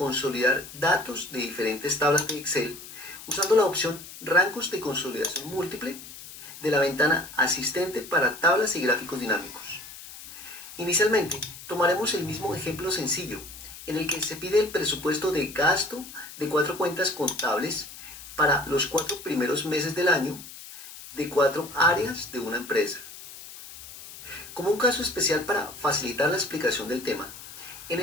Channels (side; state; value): left; noise; hiss, 15 dB below the sound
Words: datos de diferentes tablas de Excel usando la opción Rangos de consolidación múltiple de la ventana Asistente para tablas y gráficos dinámicos. Inicialmente, tomaremos el mismo ejemplo sencillo, en el que se pide el presupuesto de gasto de 4 cuentas contables para los 4 primeros meses del año de 4 áreas de una empresa. Como un caso especial para facilitar la explicación del tema, en